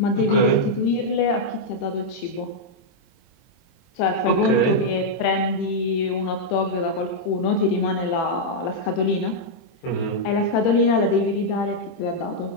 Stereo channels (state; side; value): late; right; 23 ms